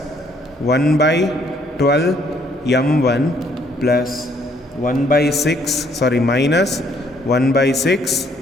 1 by 12 m1 plus 1 by 6 sorry minus 1 by 6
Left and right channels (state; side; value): normal; both; correlation 0.66